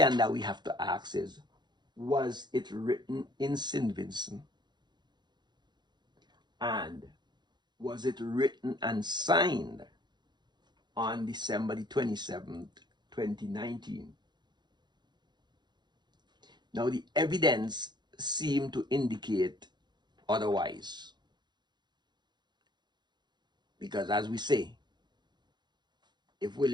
that we have to ask is, was it written in St. Vincent? And was it written and signed on December the 27th, 2019? Now, the evidence seemed to indicate otherwise. Because as we say, if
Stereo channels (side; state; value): left; late; 0.21 ms